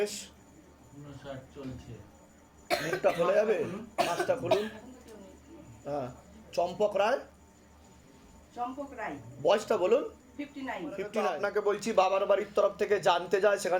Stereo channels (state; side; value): identical; both; correlation 1.00